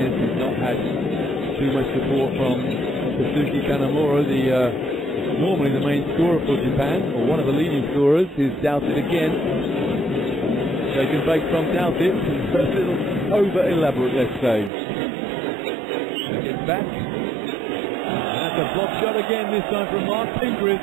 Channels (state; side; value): drops out; left; at 14.7 s